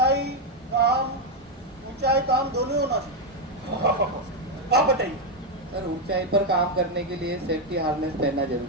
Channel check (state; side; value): normal; both; correlation 0.04